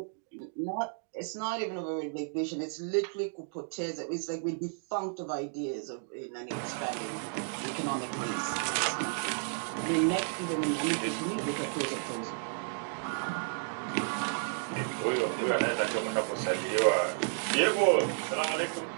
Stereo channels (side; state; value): left; silent; digital silence